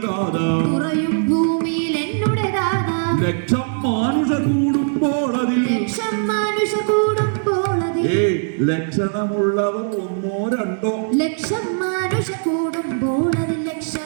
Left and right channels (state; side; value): silent; left; digital silence